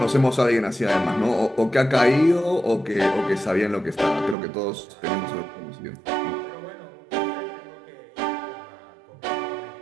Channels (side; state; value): left; drops out; at 4.4 s